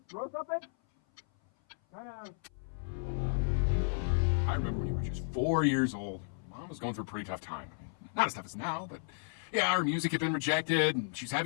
throw something? I remember when you were just 4 years old. Mom was going through a pretty tough time. Not as tough as now, but yeah, her music had been rejected, and she's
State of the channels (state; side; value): silent; right; 55 dB below the other